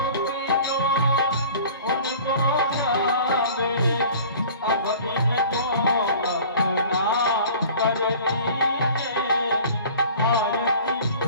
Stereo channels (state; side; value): inverted; both; correlation -0.45